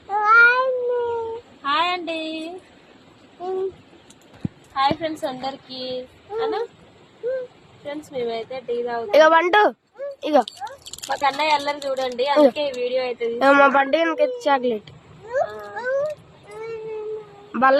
హాయ్ అండి, హాయ్ ఫ్రెండ్స్ అందరికి. అన్నా ఫ్రెండ్స్, మేమైతే టీ తాగుతాం. ఇక పండు. ఇగో మా కన్నయ్య అల్లరి చూడండి, అందుకే ఈ వీడియో అయితే మా పండుగ చాక్లెట్ బల్ల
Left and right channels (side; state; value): both; identical; correlation 1.00